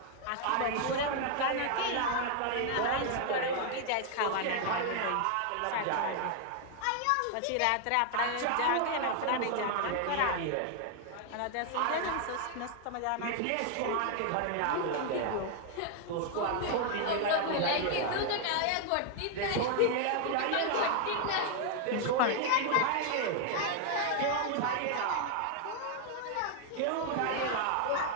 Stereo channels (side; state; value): both; different; correlation 0.00